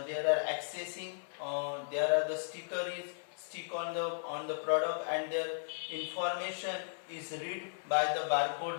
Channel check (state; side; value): silent; right; 54 dB below the other